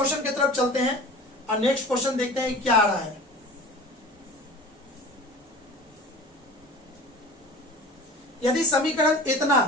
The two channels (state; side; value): normal; both; correlation 0.40